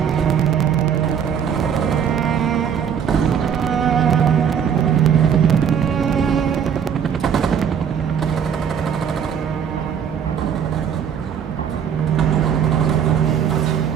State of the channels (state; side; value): quieter; left; 8.0 dB